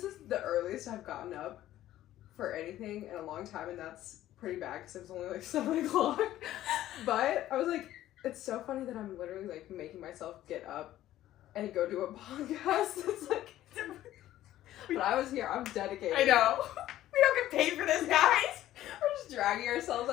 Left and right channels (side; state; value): right; quieter; 13.7 dB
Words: is the earliest I've gotten up for anything in a long time, and that's pretty bad because it was only like 7 o'clock. But I was like, it's so funny that I'm literally like making myself get up and go do a podcast. It's like, but I was here. I'm dedicated. I know. We don't get paid for this, guys. We're just dragging ourselves